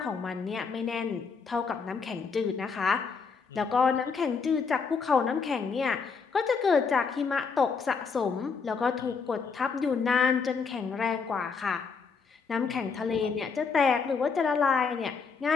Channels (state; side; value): quieter; right; 5.3 dB